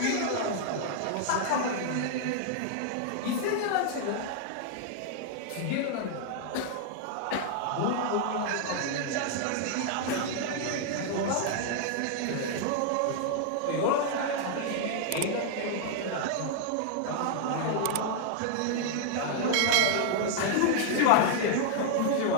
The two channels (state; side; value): different; both; correlation -0.01